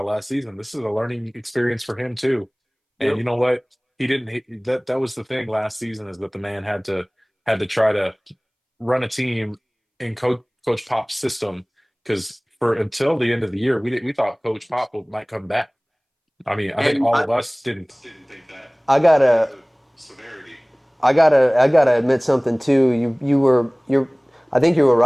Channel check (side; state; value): both; identical; correlation 1.00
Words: last season, this is a learning experience for him too. And Yep. you know what? That was the thing last season, is that the man had to try to run a team in Coach Pop's system, because for until the end of the year, we thought Coach Pop might come back. I mean, I think And all of us didn't. Didn't think that. I gotta. The severity. I gotta admit something too. I think you were